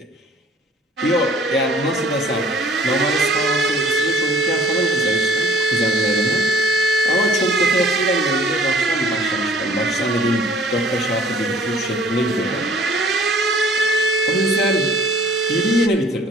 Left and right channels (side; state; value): both; normal; correlation 0.53